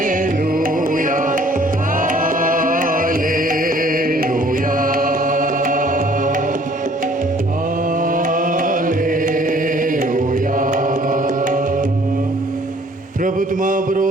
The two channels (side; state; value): both; normal; correlation 0.57